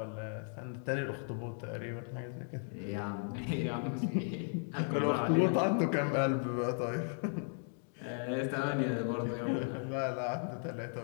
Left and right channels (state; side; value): silent; right; 54 dB below the other